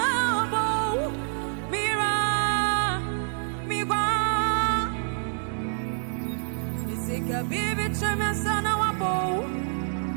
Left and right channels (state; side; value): silent; left; 60 dB below the other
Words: mira migwa, misika bibi chamia sana wabo,